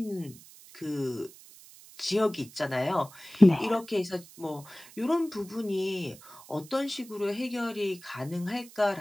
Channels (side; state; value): right; noise; hiss, 20 dB below the sound